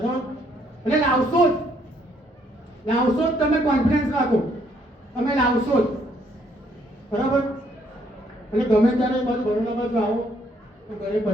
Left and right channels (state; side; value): normal; both; correlation 0.68